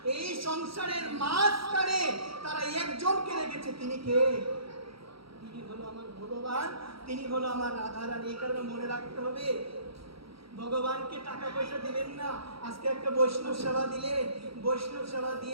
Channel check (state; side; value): late; left; 0.75 ms